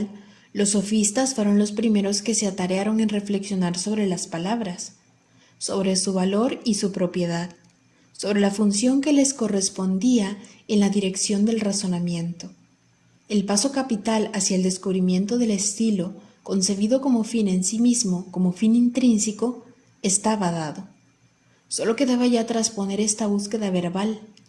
los sofistas fueron los primeros que se atarearon en reflexionar sobre las palabras, sobre su valor y su propiedad, sobre la función que les correspondía en la dirección del razonamiento. El paso capital hacia el descubrimiento del estilo, concebido como fin en sí mismo, como fin intrínseco, estaba dado. Solo quedaba ya trasponer esta búsqueda verbal,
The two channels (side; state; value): both; identical; correlation 1.00